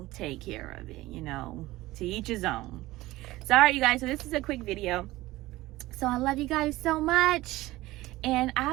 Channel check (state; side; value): quieter; left; 17.9 dB